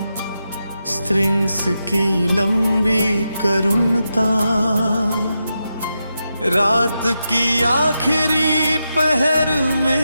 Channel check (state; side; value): inverted; both; correlation -0.87